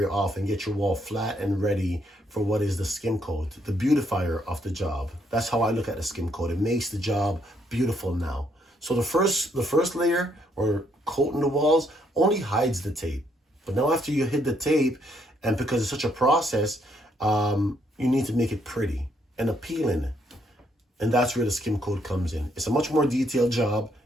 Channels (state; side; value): normal; both; correlation 0.72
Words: off and get your wall flat and ready for what is the skim coat, the beautifier of the job. That's how I look at the skim coat. It makes the job beautiful now. So the first layer, or coating the walls, only hides the tape. But now after you hit the tape, and because it's such a process, you need to make it pretty and appealing. And that's where the skim coat comes in. It's a much more detailed job